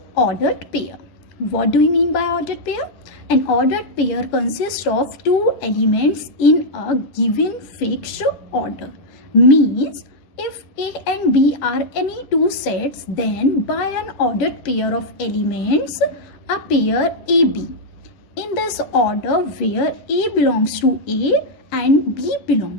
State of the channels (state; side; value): late; right; 10 ms